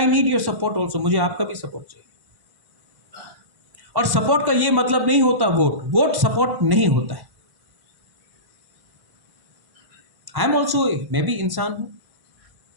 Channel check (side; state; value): left; late; 1.1 ms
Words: need your support also, मुझे आपका भी सपोर्ट चाहिए। और सपोर्ट का यह मतलब नहीं होता वोट सपोर्ट नहीं होता है। आई एम ऑल्सो, मैं भी इंसान हूं,